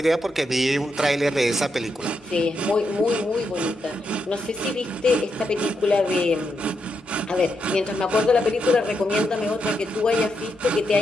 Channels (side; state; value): both; normal; correlation 0.82